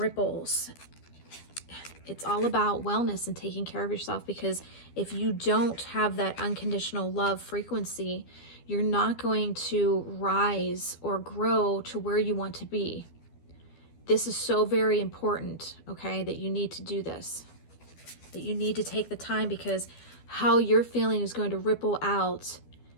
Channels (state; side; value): late; right; 12 ms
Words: It's all about wellness and taking care of yourself, because if you don't have that unconditional love frequency, you're not going to rise or grow to where you want to be. This is so very important, okay, that you need to do this. That you need to take the time, because how you're feeling is going to ripple out